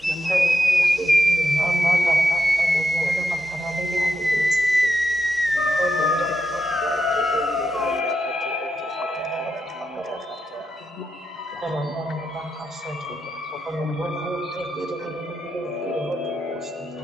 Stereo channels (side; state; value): both; normal; correlation 0.85